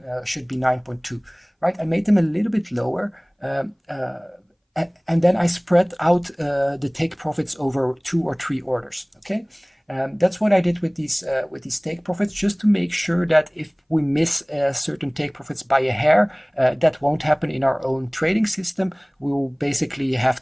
should be 9.2, right? I made them a little bit lower, and then I spread out the take profits over 2 or 3 orders. Okay, that's what I did with these take profits, just to make sure that if we miss certain take profits by a hair, that won't happen in our own trading system. We will basically have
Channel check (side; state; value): both; identical; correlation 1.00